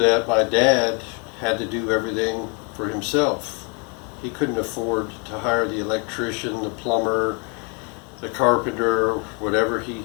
my dad had to do everything for himself. He couldn't afford to hire the electrician, the plumber, the carpenter, whatever.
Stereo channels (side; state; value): right; quieter; 35.1 dB